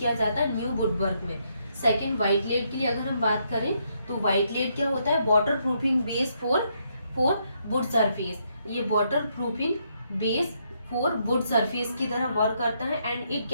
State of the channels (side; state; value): both; inverted; correlation -0.76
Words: जाता है न्यू वुडवर्क में। सेकंड, व्हाइट लेड के लिए अगर हम बात करें तो व्हाइट लेड क्या होता है, waterproofing base for wood surface. ये waterproofing base for wood surface की तरह वर्क करता है, and it